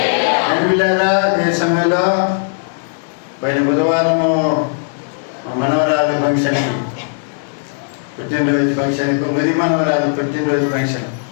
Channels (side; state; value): right; silent; 66 dB below the other